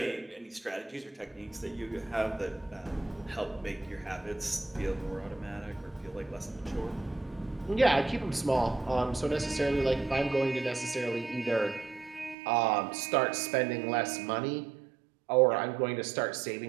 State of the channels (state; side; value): drops out; left; at 12.4 s